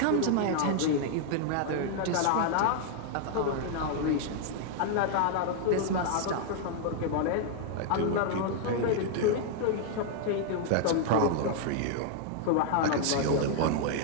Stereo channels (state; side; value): different; both; correlation 0.00